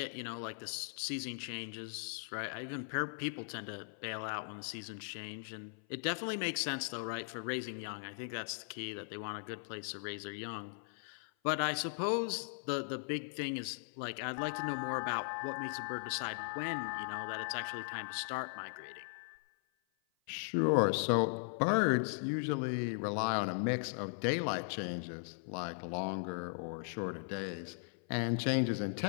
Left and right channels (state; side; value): silent; right; 52 dB below the other